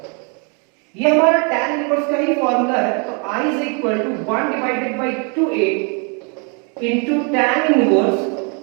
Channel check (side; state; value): left; quieter; 36.1 dB